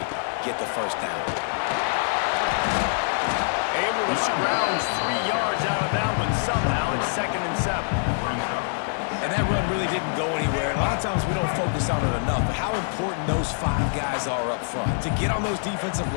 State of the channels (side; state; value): right; silent; 61 dB below the other